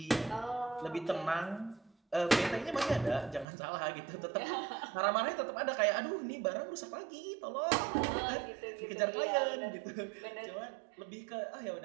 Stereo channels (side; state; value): left; drops out; at 3.5 s